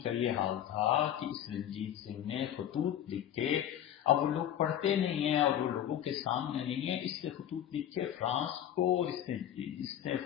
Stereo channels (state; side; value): quieter; right; 10.8 dB